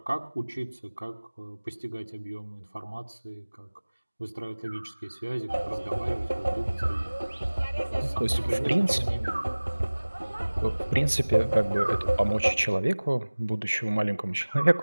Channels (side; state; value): both; inverted; correlation -1.00